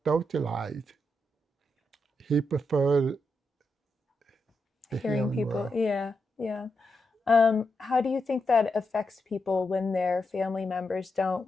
socialize?" He preferred the Hearing people. world. Yeah. How do you think that affects people when their family members don't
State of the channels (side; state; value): both; normal; correlation 0.84